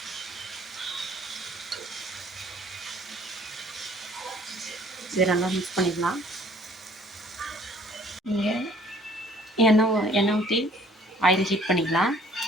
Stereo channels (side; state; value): both; normal; correlation 0.56